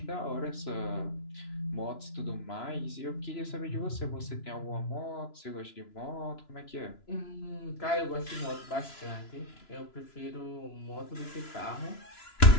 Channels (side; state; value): right; late; 3.0 ms